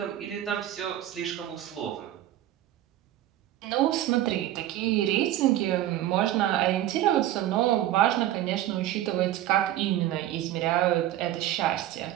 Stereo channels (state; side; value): quieter; left; 13.3 dB